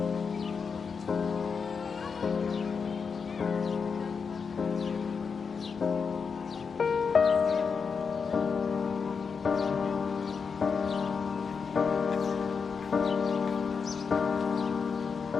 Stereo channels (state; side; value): quieter; right; 5.7 dB